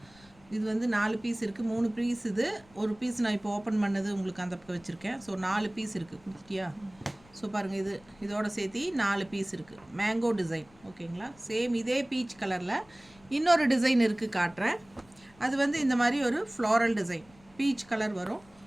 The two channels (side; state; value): left; noise; rumble, 27 dB below the sound